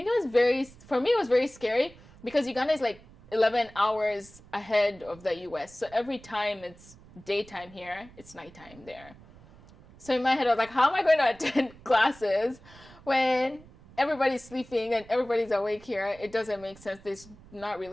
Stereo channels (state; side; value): noise; right; rumble, 23 dB below the sound